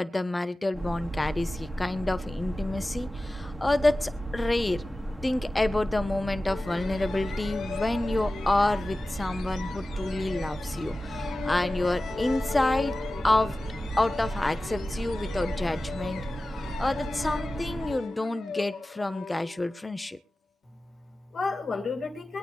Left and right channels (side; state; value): both; normal; correlation 0.96